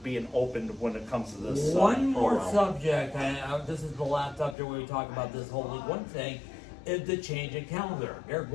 opened when it comes to this. One more subject, and this is the last subject where we talk about this whole League One thing, is the change in calendar. They're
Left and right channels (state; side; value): drops out; right; at 4.5 s